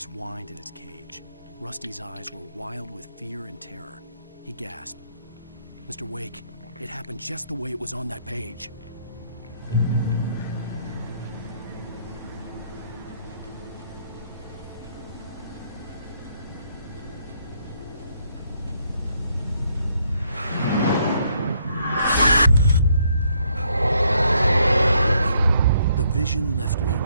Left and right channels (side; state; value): both; inverted; correlation -0.70